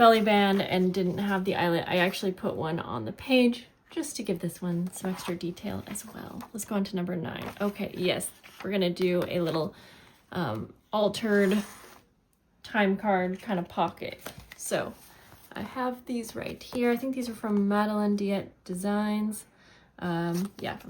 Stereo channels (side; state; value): both; identical; correlation 1.00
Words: band and didn't have the eyelet, I actually put one on the page just to give this one some extra detail as well. Let's go on to number 9. Okay, yes, we're gonna do a little altered time card kind of pocket. So I have these right here. I think these are from Madeline Diet Designs. Yeah,